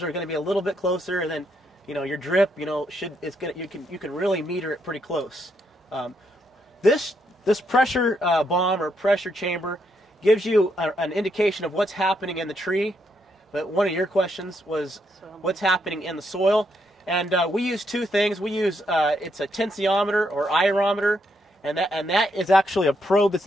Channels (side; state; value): both; normal; correlation 0.77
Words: are going to be a little bit closer, and then, you know, your drip, you know, you can really meter it pretty close. This pressure bomb or pressure chamber gives you an indication of what's happening in the tree, but one of your questions was what's happening in the soil, and we use two things. We use it's a tensiometer or aerometer, and that is actually a probe that's